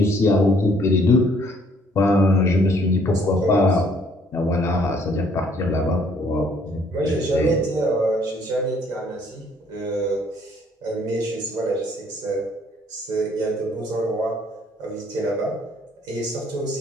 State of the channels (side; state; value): both; normal; correlation 0.62